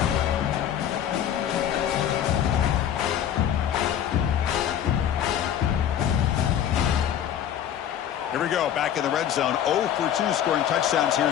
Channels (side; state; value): right; quieter; 10.0 dB